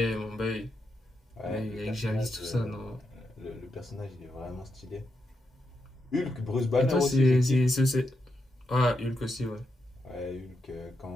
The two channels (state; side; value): normal; both; correlation 0.84